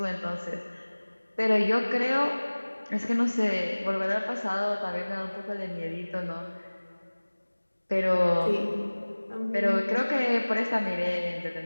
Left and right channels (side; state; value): both; inverted; correlation -1.00